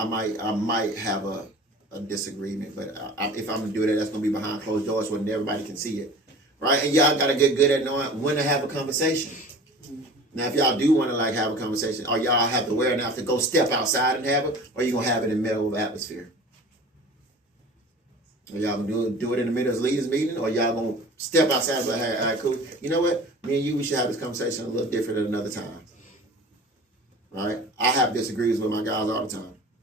might have a disagreement, but if I'm going to do that, that's going to be behind closed doors where everybody can see it. Right? And y'all got to get good at knowing when to have a conversation. Now, if y'all do want to like have a conversation, or y'all have to wear enough to go step outside and have it, or you gonna have it in the middle of the atmosphere? Or y'all gonna do it in the middle of the leaders meeting, or y'all gonna step outside and be like, hey, all right, cool. You know what? Me and you, we should have this conversation a little different at another time. Right? I have disagreements with my guys all the time.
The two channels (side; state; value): both; normal; correlation 0.41